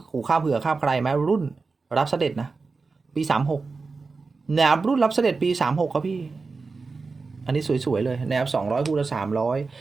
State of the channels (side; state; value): left; quieter; 4.2 dB